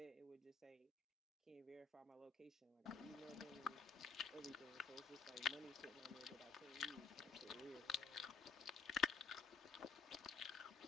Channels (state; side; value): quieter; right; 5.2 dB